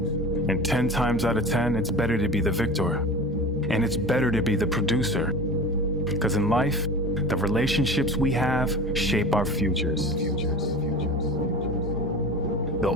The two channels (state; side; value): normal; both; correlation 0.34